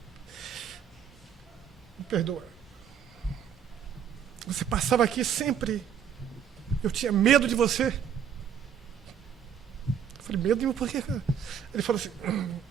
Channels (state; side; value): quieter; left; 8.3 dB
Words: me perdoa. Você passava aqui sempre. Eu tinha medo de você. Eu falei, medo de mim por quê, cara? Ele falou assim: